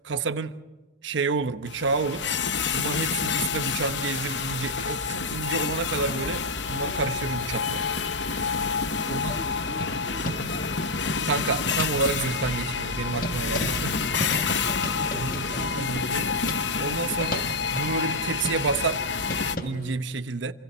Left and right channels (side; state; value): both; normal; correlation -0.01